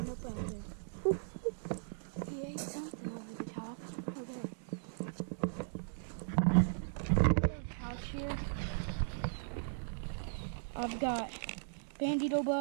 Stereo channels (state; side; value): silent; left; digital silence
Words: up out there. He ate something over the top. Okay. Pouch here. I've got bandito